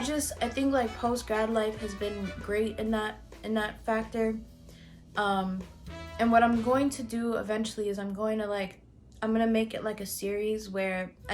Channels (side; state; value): both; identical; correlation 1.00